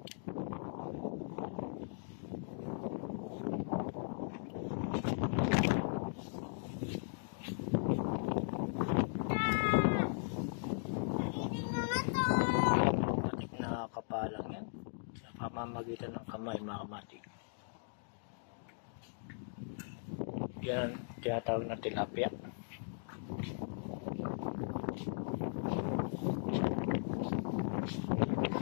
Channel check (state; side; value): silent; right; digital silence